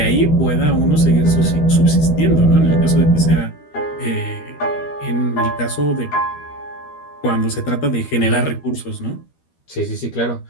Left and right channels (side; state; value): right; late; 13 ms